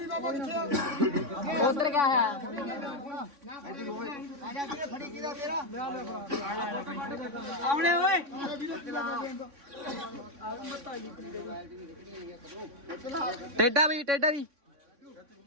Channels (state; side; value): late; left; 3.6 ms